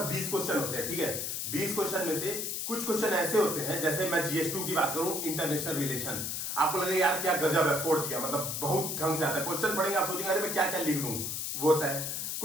20 क्वेश्चन होते हैं, ठीक है। 20 क्वेश्चन में से कुछ क्वेश्चन ऐसे होते हैं, जैसे मैं GS2 की बात करूं, इंटरनेशनल रिलेशन, आपको लगेगा यार क्या गजब है, फोड़ दिया, मतलब बहुत ढंग से आता है। क्वेश्चन पढ़ेंगे आप सोचेंगे अरे मैं क्या क्या लिख दूं, वो होता है।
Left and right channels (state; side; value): noise; left; hiss, 3 dB below the sound